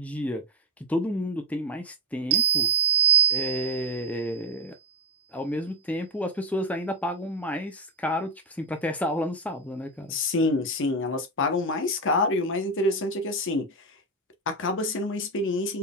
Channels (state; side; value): normal; both; correlation 0.06